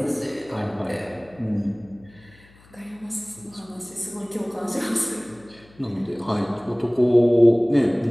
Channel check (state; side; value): noise; left; hum, 27 dB below the sound